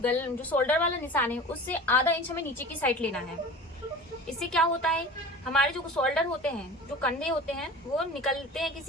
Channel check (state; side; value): normal; both; correlation 0.38